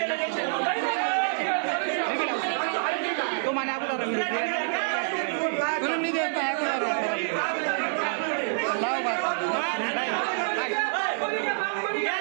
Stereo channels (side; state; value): left; silent; digital silence